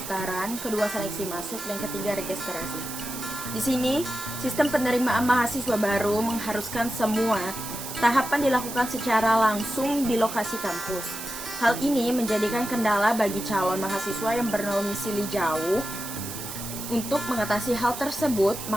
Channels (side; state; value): right; noise; hiss, 8 dB below the sound